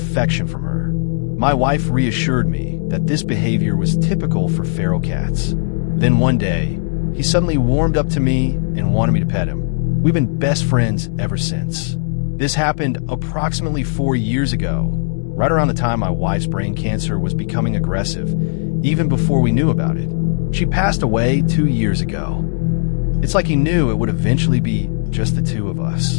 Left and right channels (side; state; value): right; silent; digital silence